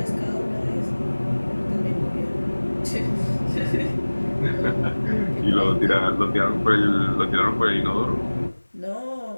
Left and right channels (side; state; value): both; inverted; correlation -1.00